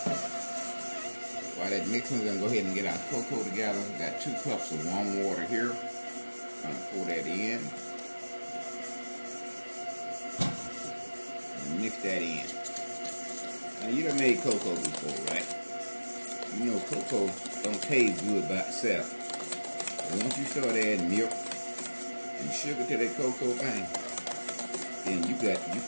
we're going to go ahead and get our cocoa together. We got 2 cups of warm water here. I'm going to pour that in and mix that in. Now, you done made cocoa before, right? You know cocoa don't taste good by itself. But once you start adding milk and sugar to that cocoa thing, then you got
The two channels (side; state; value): both; inverted; correlation -1.00